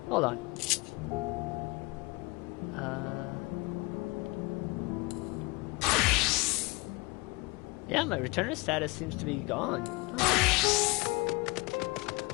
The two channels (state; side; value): quieter; right; 25.2 dB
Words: Hold on. Yeah, my returner status seems to be gone. Oh.